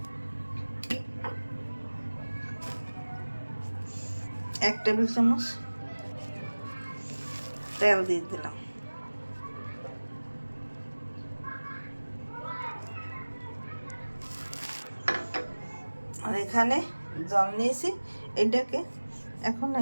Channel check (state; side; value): inverted; both; correlation -1.00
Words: 1 টেবিল চামচ তেল দিয়ে দিলাম, আর এখানে জল নিয়েছি। এটাকে এখন